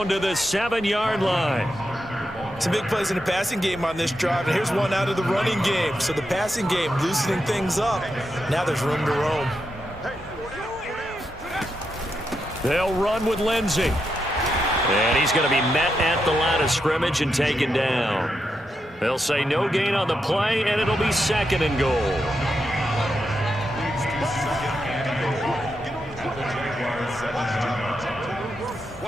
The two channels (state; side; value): normal; both; correlation 0.84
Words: to the 7-yard line. Some big plays in the passing game on this drive, and here's one out of the running game. So the passing game loosening things up. Now there's room to roam. They'll run with Lindsey. And he's going to be met at the line of scrimmage and taken down. They'll say no gain on the play, and it'll be 2nd and goal.